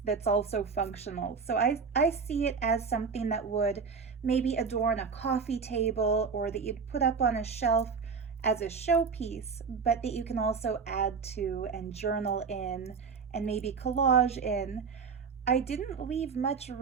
that's also functional. So I see it as something that would maybe adorn a coffee table or that you'd put up on a shelf as a showpiece, but that you can also add to and journal in and maybe collage in. I didn't leave much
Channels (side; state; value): left; quieter; 5.5 dB